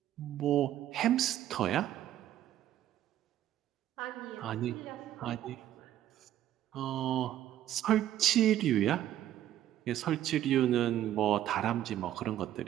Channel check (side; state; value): left; quieter; 12.2 dB